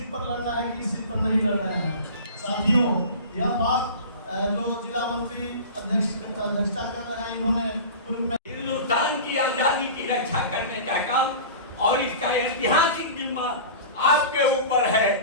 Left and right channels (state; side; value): inverted; both; correlation -0.36